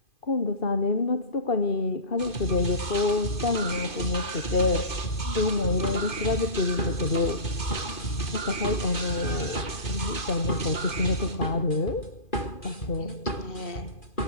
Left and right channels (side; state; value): right; late; 2.5 ms